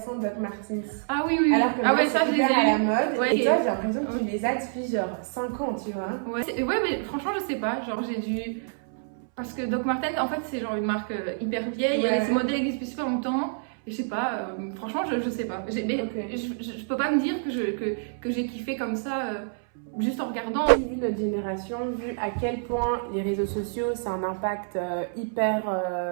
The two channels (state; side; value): silent; left; 60 dB below the other